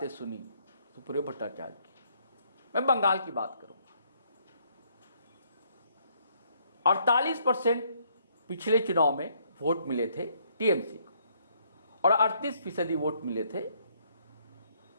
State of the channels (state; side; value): inverted; both; correlation -0.69